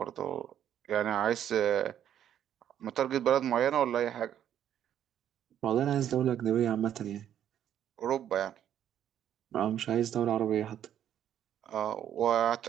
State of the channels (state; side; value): quieter; left; 10.3 dB